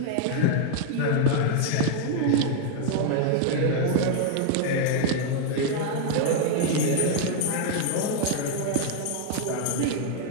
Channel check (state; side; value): different; both; correlation 0.00